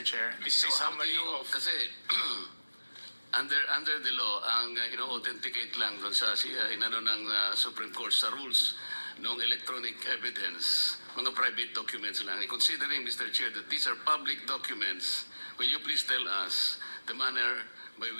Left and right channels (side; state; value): both; inverted; correlation -1.00